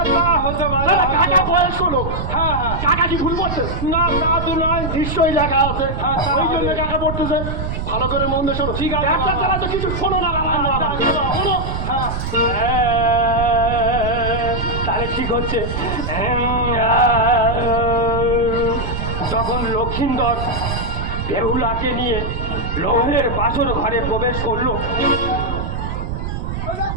তা হতে পারে। কাকা বয়স হলো হ্যাঁ হ্যাঁ কাকা কি ভুল করছে না তা তো নয়। নিশ্চয়ই লেখা আছে হ্যাঁ, তা ওই জন্য হবে। কাকা পড়তেছে ভালো করে মন দিয়ে শোনো ঠিক আছে। ব্যবসা চালা তো কিছু শোনো না রামায়ণ মহাভারত শোনো তাহলে ঠিক হচ্ছে। তখন লক্ষিন্দর বেহুলাকে নিয়ে লৌহের বাসর ঘরে প্রবেশ করলো,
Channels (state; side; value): noise; right; rumble, 4 dB below the sound